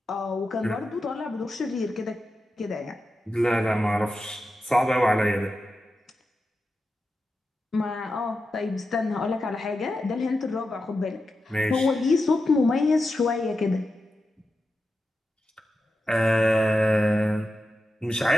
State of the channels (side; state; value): both; normal; correlation 0.90